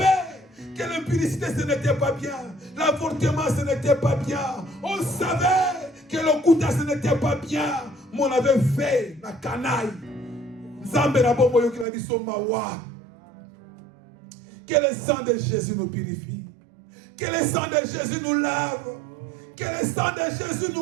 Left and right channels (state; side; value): drops out; left; at 11.9 s